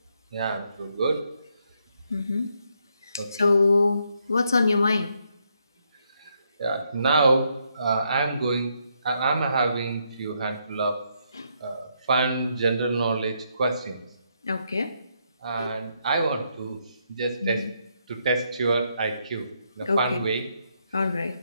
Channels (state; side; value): inverted; both; correlation -0.77